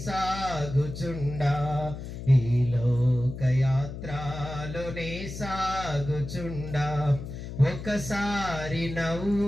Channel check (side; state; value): left; noise; hum, 9 dB below the sound